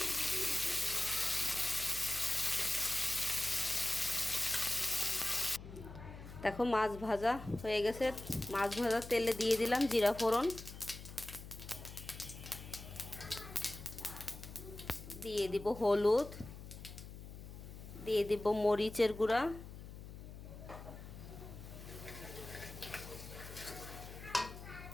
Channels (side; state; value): left; noise; hum, 13 dB below the sound